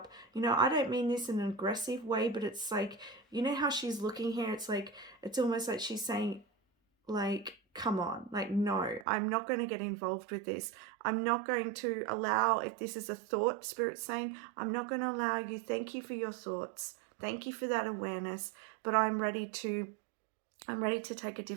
You know, I don't mean this in an aggressive way, but it's like, you know how she's looking here, it's like, it's almost like she's saying, like, come on, like, no, I'm not going to get involved with this. I'm not going to allow, if this is a thought, Spirit's saying, I'm not going to allow you. Thank you for your thoughts. Thank you for that awareness, but I'm ready to take a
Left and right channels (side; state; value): left; drops out; at 9.1 s